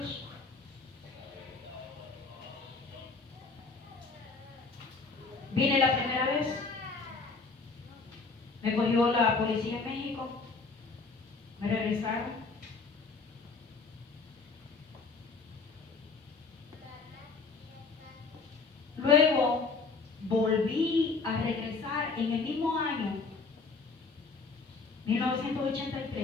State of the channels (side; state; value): right; quieter; 4.3 dB